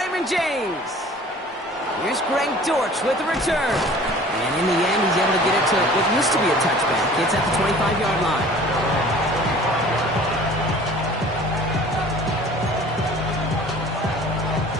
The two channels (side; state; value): both; normal; correlation 0.47